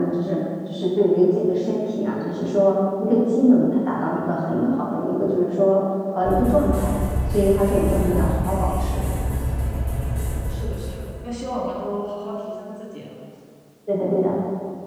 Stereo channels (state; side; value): identical; both; correlation 1.00